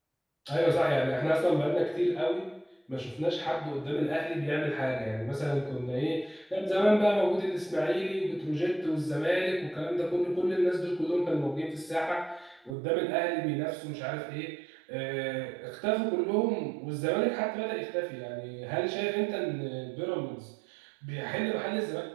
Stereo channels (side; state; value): left; drops out; at 12.8 s